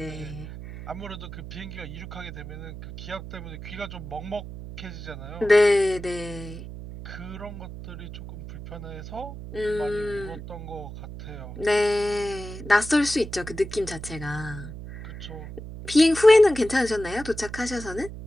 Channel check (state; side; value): noise; right; hum, 11 dB below the sound